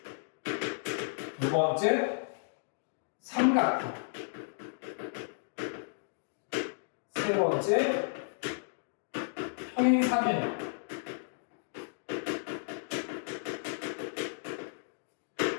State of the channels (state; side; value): silent; right; digital silence